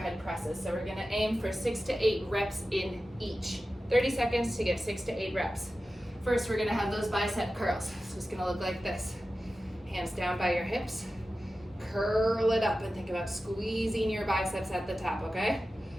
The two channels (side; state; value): both; normal; correlation 0.94